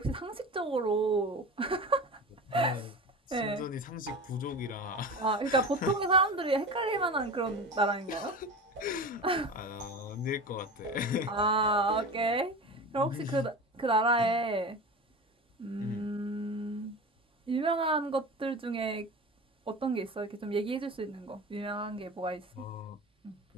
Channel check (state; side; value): normal; both; correlation 0.31